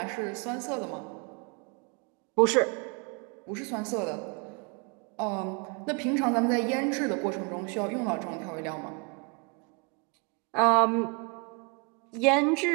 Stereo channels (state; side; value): quieter; left; 32.9 dB